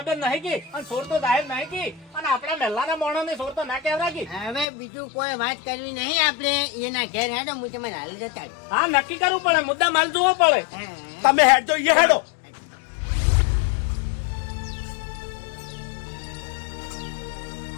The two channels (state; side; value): drops out; right; at 4.7 s